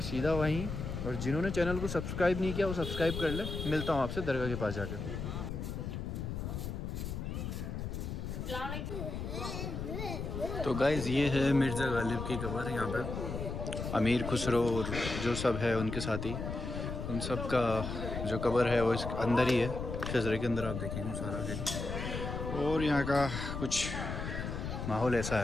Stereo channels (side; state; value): left; noise; rumble, 5 dB below the sound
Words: سیدھا وہیں، اور جنہوں نے چینل کو سبسکرائب نہیں کیا وہ سبسکرائب کر لیں۔ ملتا ہوں آپ سے درگاہ کے پاس جا کے۔ تو گائز یہ ہے مرزا غالب کی قبر، یہاں پہ امیر خسرو اور جو سب ہے ان کے ساتھی، ان سب کا جو قبر ہے وہ اس اندر ہی ہے، شجرے کے اندر آپ دیکھیں گے سارا دن۔ اور یہاں کا کچھ ماحول ایسا